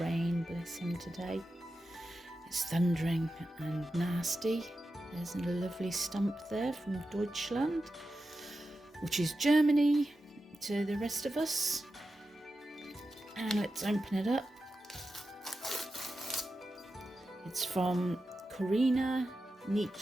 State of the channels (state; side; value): normal; both; correlation 0.91